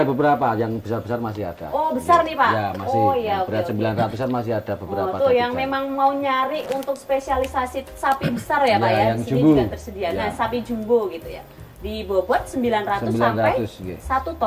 ya. beberapa yang besar-besar masih ada. Oh, besar nih, Pak? Ya, masih. Oh, iya, Yang berat oke, oke. 900-an masih ada beberapa. Oh, tuh yang dapisan. memang mau nyari untuk spesialisasi sapi besar ya Pak Ya, ya. yang Di sini jumbo. juga tersedia. Nah, Ya. sapi jumbo gitu ya. Di bobot 900 sampai 900, 1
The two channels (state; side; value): identical; both; correlation 1.00